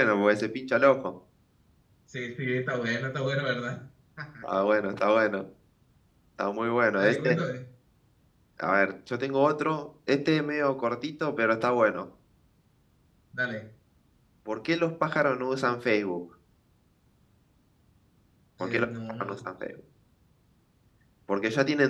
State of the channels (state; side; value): identical; both; correlation 1.00